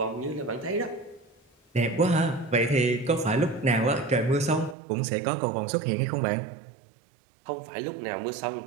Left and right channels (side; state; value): left; drops out; at 4.8 s